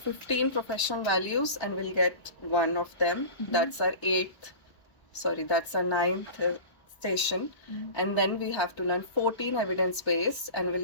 professional values, and we'll get 1 of them. That's our 9th station. And then we have to learn 14 evidence-based, and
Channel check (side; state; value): right; late; 1.3 ms